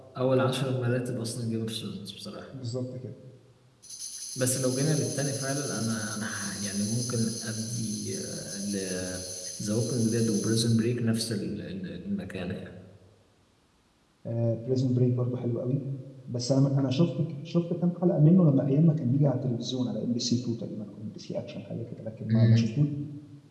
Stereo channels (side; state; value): both; identical; correlation 1.00